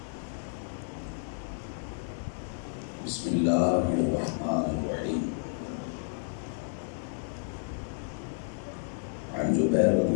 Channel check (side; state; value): right; silent; 57 dB below the other